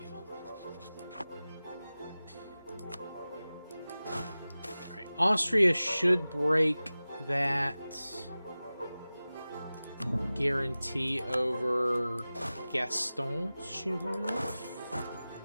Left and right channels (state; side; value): inverted; both; correlation -0.97